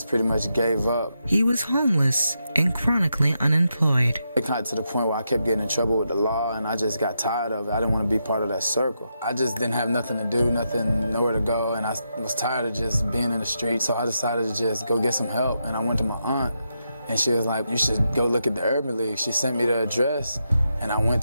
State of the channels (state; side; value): inverted; both; correlation -0.84